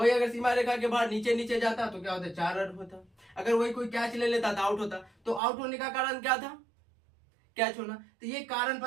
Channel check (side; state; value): left; drops out; at 5.4 s